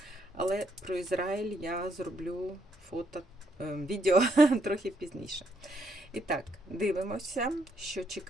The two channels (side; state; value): both; normal; correlation 0.74